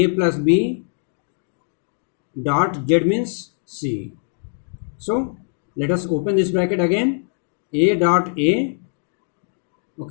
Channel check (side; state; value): right; silent; digital silence